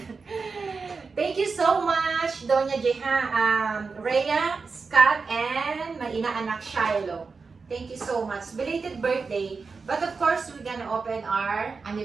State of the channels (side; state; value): left; quieter; 4.7 dB